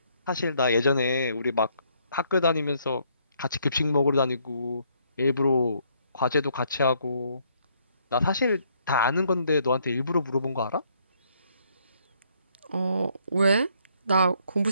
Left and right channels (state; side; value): inverted; both; correlation -0.69